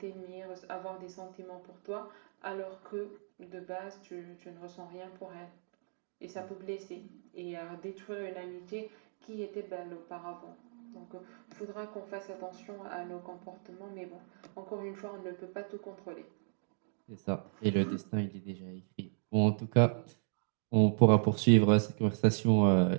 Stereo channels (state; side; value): silent; left; digital silence